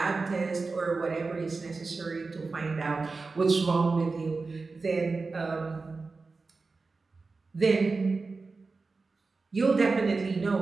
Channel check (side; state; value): left; quieter; 4.0 dB